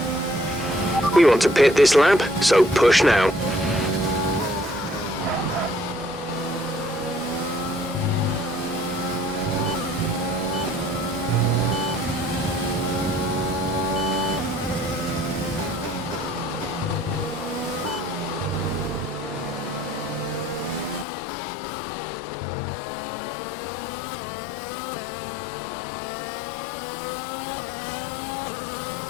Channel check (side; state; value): right; drops out; at 21.1 s